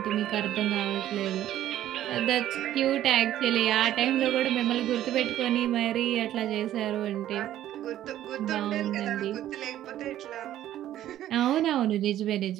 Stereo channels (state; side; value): quieter; left; 12.6 dB